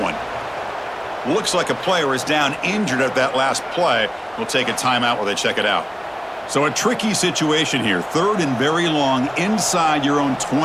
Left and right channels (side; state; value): both; identical; correlation 1.00